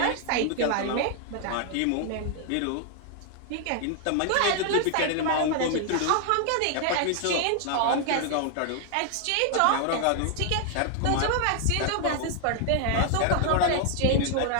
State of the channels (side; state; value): both; different; correlation 0.00